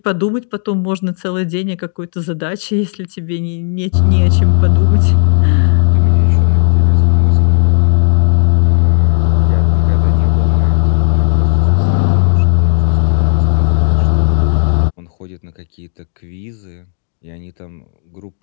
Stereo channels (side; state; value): right; silent; digital silence